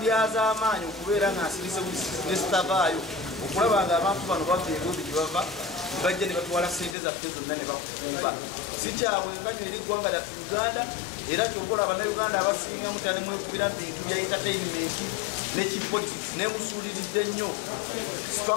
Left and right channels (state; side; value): drops out; right; at 7.0 s